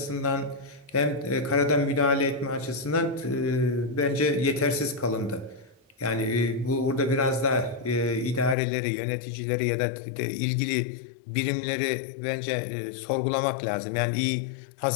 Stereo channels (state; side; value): drops out; right; at 8.6 s